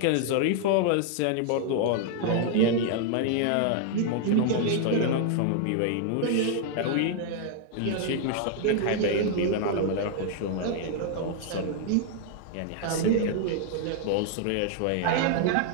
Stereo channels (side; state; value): both; different; correlation -0.01